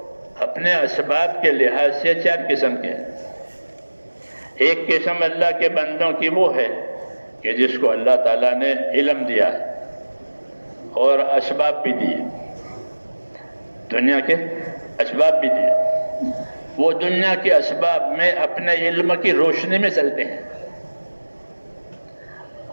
اپنے اسباب کے لحاظ سے 4 قسم کے ہیں۔ ایک قسم اللہ کے بندوں کی وہ ہے کہ جس کو اللہ تعالیٰ نے علم دیا ہے اور اسباب بھی دیے، دنیا کے اسباب بھی دیے، وہ دنیا کے اسباب میں اپنے علم کی روشنی میں چلتے ہیں۔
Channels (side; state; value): both; inverted; correlation -1.00